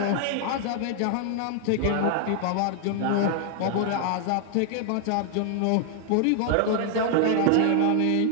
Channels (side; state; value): both; different; correlation 0.00